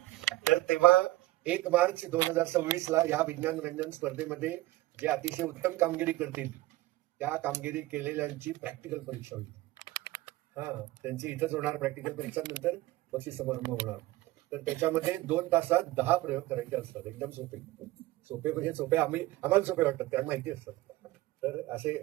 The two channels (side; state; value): left; quieter; 17.9 dB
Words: तर तेव्हा 1 मार्च 2026 या विज्ञान रंजन स्पर्धेमध्ये जे अतिशय उत्तम कामगिरी करतील त्या कामगिरी केलेल्यांची प्रॅक्टिकल परीक्षा होईल. त्यांची इथंच होणार प्रॅक्टिकल परीक्षा. नंतर बक्षीस समारंभ होणार. तर त्याच्यामध्ये 2 तासात 10 प्रयोग करायचे असतात. एकदम सोपे म्हणजे सोपे आम्हाला सोपे वाटतात कारण माहिती असतात. तर असे